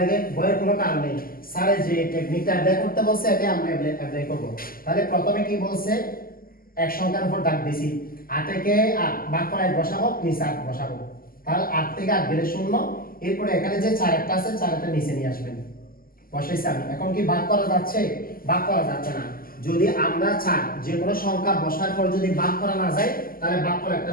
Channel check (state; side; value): late; right; 0.42 ms